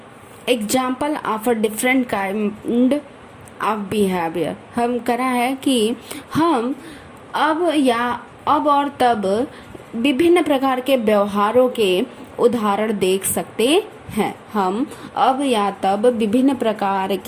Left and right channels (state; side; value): identical; both; correlation 1.00